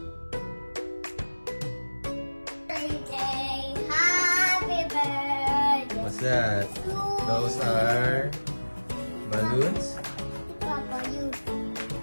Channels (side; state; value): both; inverted; correlation -1.00